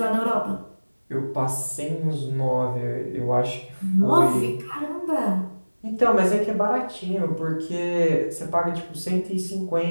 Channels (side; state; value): both; inverted; correlation -1.00